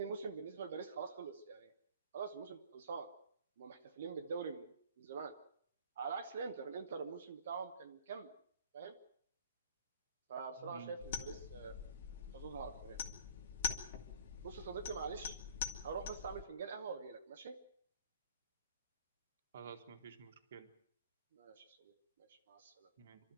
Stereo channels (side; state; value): both; inverted; correlation -0.51